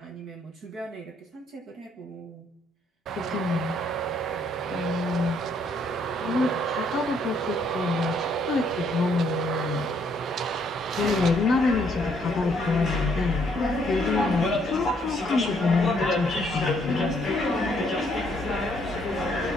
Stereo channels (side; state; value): both; normal; correlation 0.69